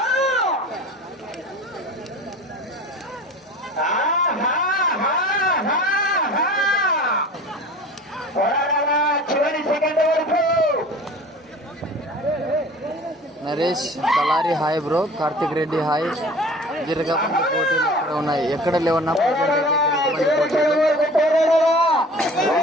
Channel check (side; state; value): both; normal; correlation 0.42